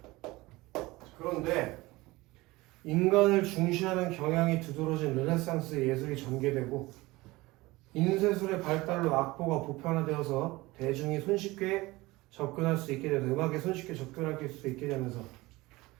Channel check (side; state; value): left; quieter; 20.7 dB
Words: 그런데 인간을 중시하는 경향이 두드러진 르네상스 예술이 전개되고 인쇄술의 발달로 악보가 보편화되어서 대중이 손쉽게 접근할 수 있게 되면서 음악에 손쉽게 접근할 수 있게 되면서